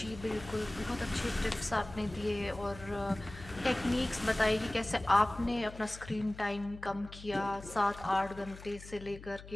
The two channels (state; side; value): noise; left; hum, 15 dB below the sound